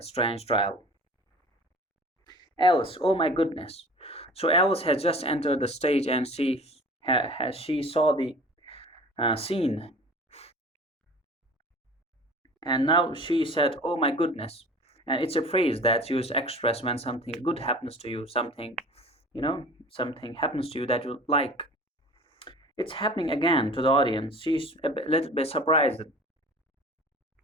strange trial. Alice, oh my goodness. So Alice has just entered the stage and she saw the scene, and now she said, oh my goodness. And it's a phrase that's used to express when something good happens to you, something happens to you that you like. It's happening again to the audience. She's little bit surprised,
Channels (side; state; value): both; normal; correlation 0.43